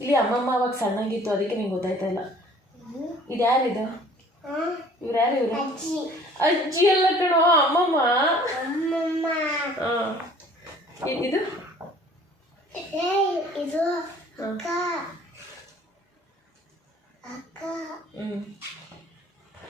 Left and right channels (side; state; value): both; normal; correlation 0.53